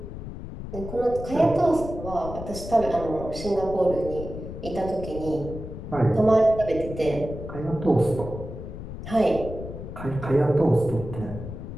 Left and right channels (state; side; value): noise; left; rumble, 9 dB below the sound